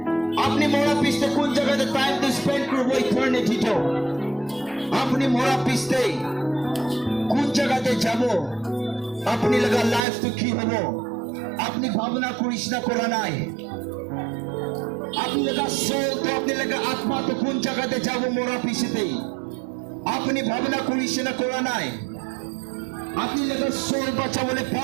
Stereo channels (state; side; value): drops out; left; at 10.1 s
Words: আপনি মোরা পিছতে কোন জায়গাতে টাইম তো স্পেন্ড করব ইটারনিটি তো আপনি মোরা পিছতে কোন জায়গাতে যাব আপনি লাগা লাইফ তো কি হবে আপনি ভাবনা করিস না করা নাই আপনি লাগা সোল তো আপনি লাগা আত্মা তো কোন জায়গাতে যাব মোরা পিছতে আপনি ভাবনা করিস না করা নাই আপনি লেগে সোল বাঁচা বলে